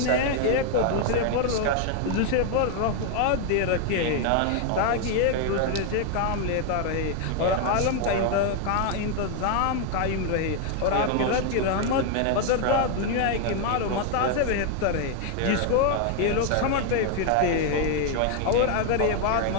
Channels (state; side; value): different; both; correlation 0.01